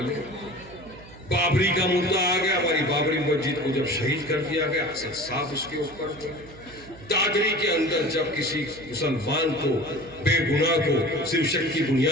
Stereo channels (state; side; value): noise; right; hum, 19 dB below the sound